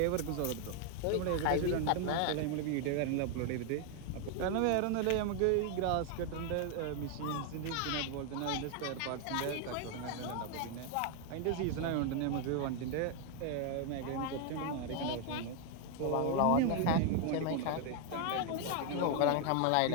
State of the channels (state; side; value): different; both; correlation 0.01